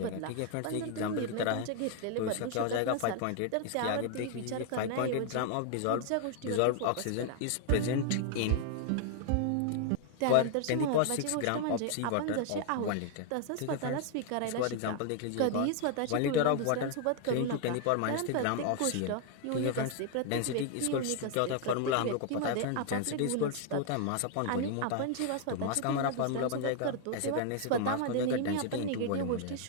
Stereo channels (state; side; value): different; both; correlation 0.00